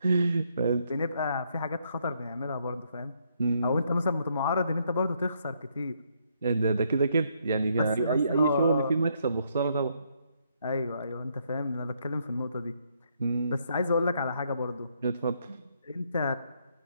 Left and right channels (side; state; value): both; inverted; correlation -0.73